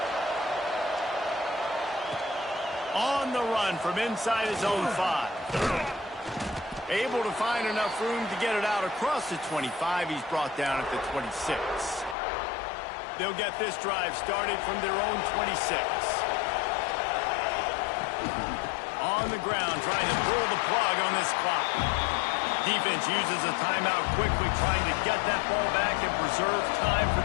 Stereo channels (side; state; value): right; drops out; at 12.2 s